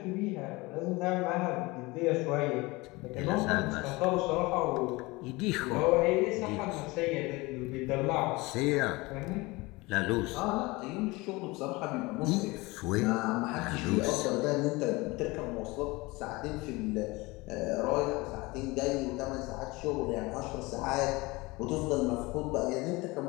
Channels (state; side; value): quieter; right; 23.1 dB